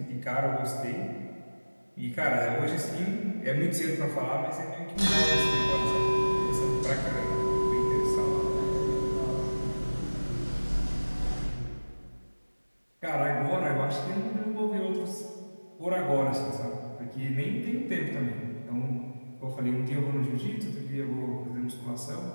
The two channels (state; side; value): inverted; both; correlation -1.00